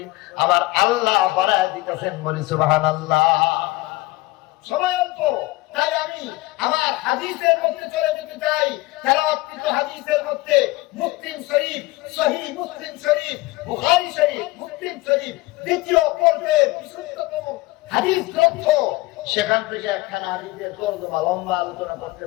আমার আল্লাহ বাড়ায় দিতেছেন, বলি সুবহানাল্লাহ। সময় অল্প, তাই আমি আমার হাদিসের মধ্যে চলে যেতে চাই। তেলাওয়াতকৃত হাদিসের মধ্যে মুসলিম শরীফ, সহিহ মুসলিম শরীফ, বুখারী শরীফ, মুসলিম শরীফ দ্বিতীয় পর্বের বিশুদ্ধতম হাদিস গ্রন্থ, সেখান থেকে একখানা হাদিসের তর্জমা লম্বা আলোচনা করতে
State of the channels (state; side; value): quieter; right; 20.2 dB